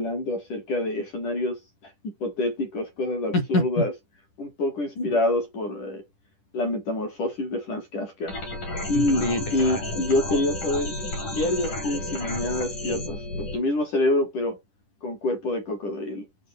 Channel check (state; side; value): late; right; 10 ms